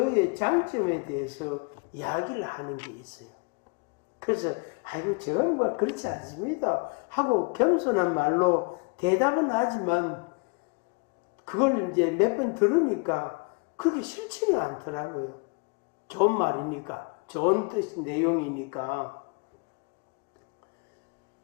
장점에 대해서 이야기를 하는 게 있어요. 그래서 아이고 저건 뭐 그렇지 않습니다 하고 겸손한 말로 대답은 하지만 그걸 이제 몇 번 들으니까 그렇게 싫지는 않더라고요. 좋은 말이니까, 좋은 뜻 내용이니까.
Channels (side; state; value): right; quieter; 33.0 dB